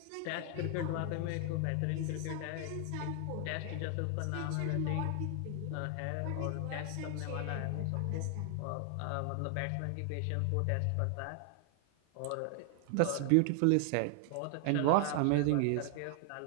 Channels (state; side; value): different; both; correlation 0.00